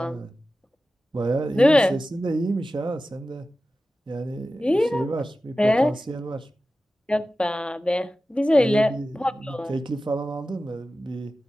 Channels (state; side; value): normal; both; correlation 0.94